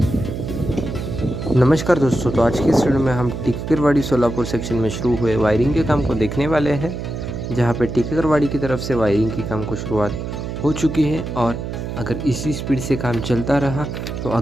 दोस्तों, तो आज की इस वीडियो में हम टिकेकरवाड़ी सोलापुर सेक्शन में शुरू हुए वायरिंग के काम को देखने वाले हैं, जहां पे टिकेकरवाड़ी की तरफ से वायरिंग की काम को शुरुआत हो चुकी है और अगर इसी स्पीड से काम चलता रहा तो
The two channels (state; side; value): noise; right; hum, 6 dB below the sound